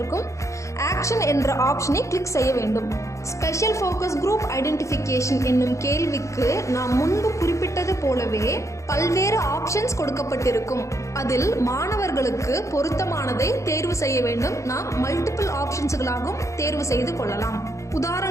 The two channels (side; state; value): right; late; 0.15 ms